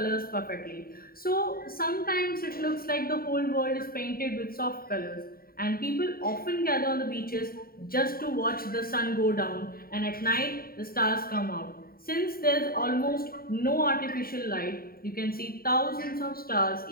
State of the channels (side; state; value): right; late; 0.43 ms